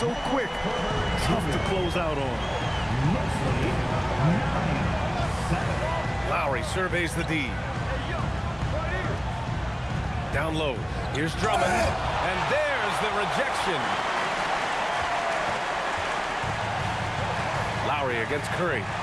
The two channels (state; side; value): identical; both; correlation 1.00